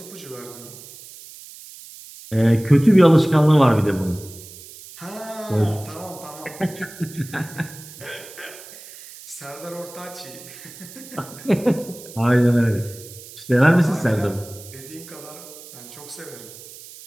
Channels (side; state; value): right; noise; hiss, 17 dB below the sound